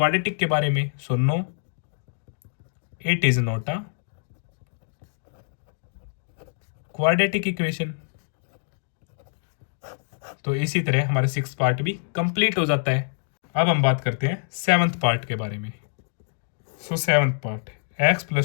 के बारे में। So no, it is not a quadratic equation. तो इसी तरह हमारा सिक्स पार्ट भी कंप्लीट हो जाता है। अब हम बात करते हैं सेवंथ पार्ट के बारे में। So seventh part, x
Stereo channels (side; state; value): right; silent; digital silence